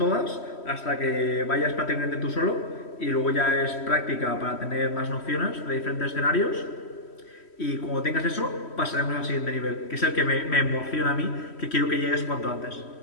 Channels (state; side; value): late; right; 3.1 ms